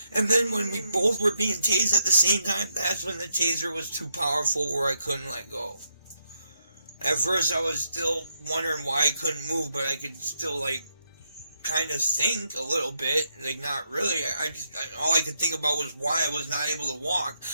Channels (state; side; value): inverted; both; correlation -0.79